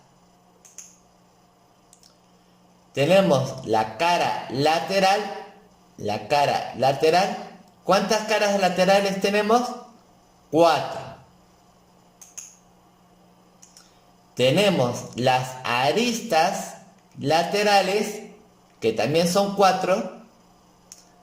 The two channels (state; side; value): identical; both; correlation 1.00